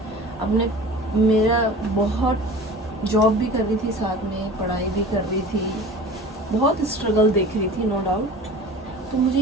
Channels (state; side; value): normal; both; correlation 0.40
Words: अपने मेरा बहुत जॉब भी कर रही थी, साथ में पढ़ाई भी कर रही थी, बहुत स्ट्रगल देख रही थी, नो डाउट। तो मुझे